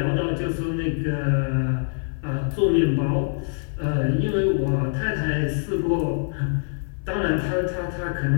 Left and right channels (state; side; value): silent; right; digital silence